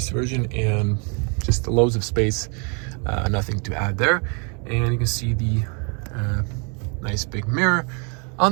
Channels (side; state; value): left; quieter; 36.3 dB